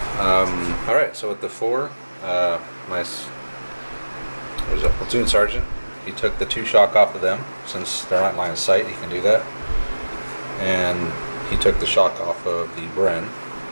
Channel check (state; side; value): inverted; both; correlation -1.00